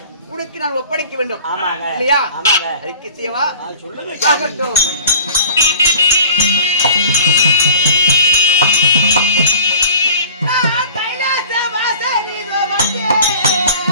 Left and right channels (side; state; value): both; inverted; correlation -0.43